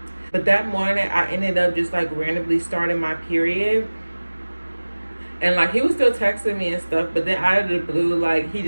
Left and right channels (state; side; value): inverted; both; correlation -1.00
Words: But that morning, I ended up just like randomly starting my period. And like he was still texting me and stuff, but then out of the blue, like he